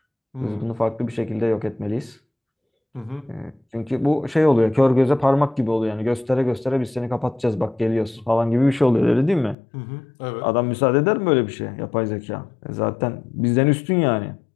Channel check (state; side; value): drops out; right; at 9.6 s